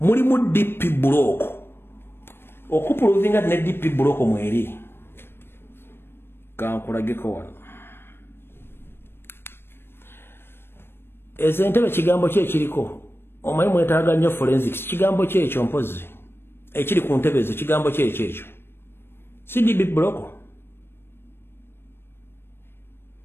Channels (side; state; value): right; late; 0.11 ms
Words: DP block okupuluvinga ne DP block mweri kankulageko wano ezentebe kigambo kye kiriko omanyi mwetaaga nnyo forensics kigambo kye ekyo mpozi ekiri ku ntebe ezo kigambo kye ekyo si DP block